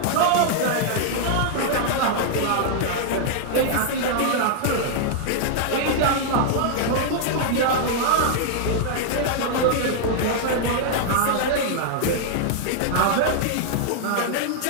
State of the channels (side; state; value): both; different; correlation -0.01